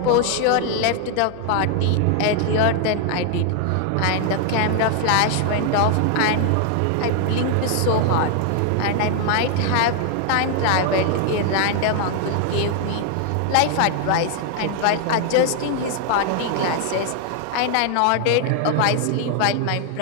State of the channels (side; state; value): both; different; correlation 0.00